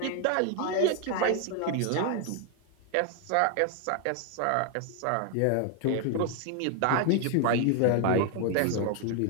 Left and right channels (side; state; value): both; different; correlation 0.01